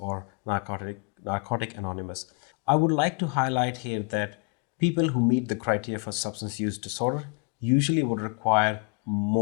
Narcotic Anonymous. I would like to highlight here that people who meet the criteria for substance use disorder usually would require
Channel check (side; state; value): right; quieter; 34.1 dB